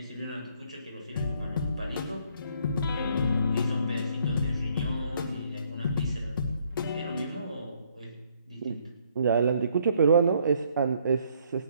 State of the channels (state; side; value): inverted; both; correlation -0.67